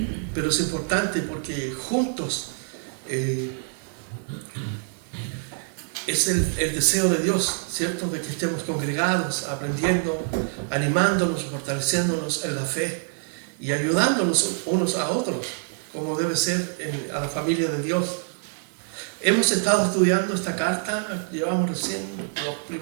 Pero es importante porque juntos es el deseo de Dios, ¿cierto?, de que estemos congregados, aprendiendo, animándonos, fortaleciéndonos en la fe y ayudándonos unos a otros, como debe ser a la familia de Dios. Hemos estado estudiando esta carta, llevamos recién los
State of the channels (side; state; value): left; silent; digital silence